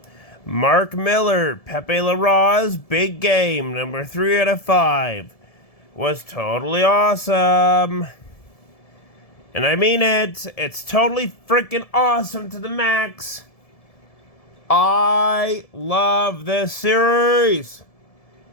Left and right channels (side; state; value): right; late; 1.7 ms